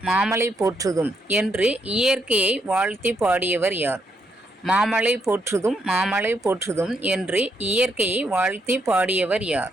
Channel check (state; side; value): normal; both; correlation 0.77